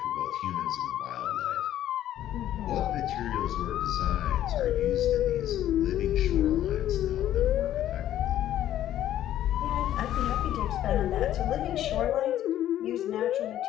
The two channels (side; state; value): right; quieter; 12.1 dB